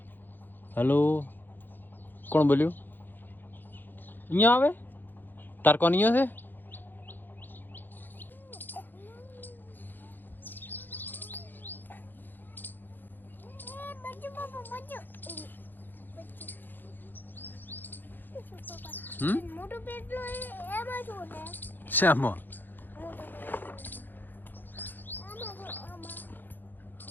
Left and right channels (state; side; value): late; right; 0.091 ms